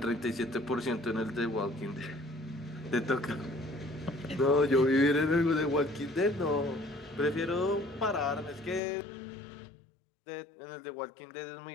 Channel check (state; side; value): drops out; right; at 8.8 s